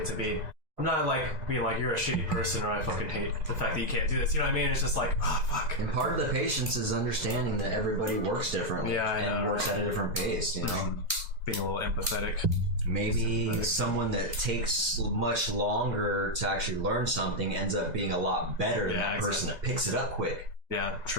to be. I'm not like being like, you're a shitty person or I fucking hate the fact that you can't do this. You know what I mean? It's just like, fuck. And part of the patience is understanding that everybody works differently and works at a different pace, Being a little empathetic. Maybe someone that takes much longer to actually learn something ends up being a lot better than that person that picks it up quick. Yeah,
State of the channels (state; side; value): late; left; 2.0 ms